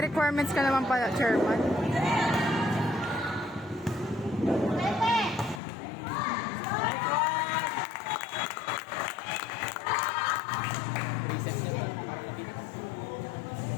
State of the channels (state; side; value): drops out; right; at 5.6 s